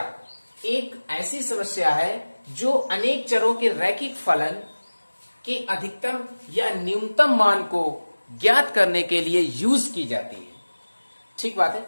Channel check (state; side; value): inverted; both; correlation -1.00